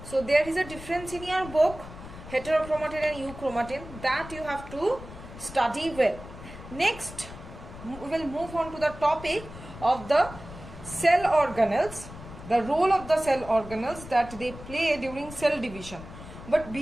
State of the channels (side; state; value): left; noise; rumble, 14 dB below the sound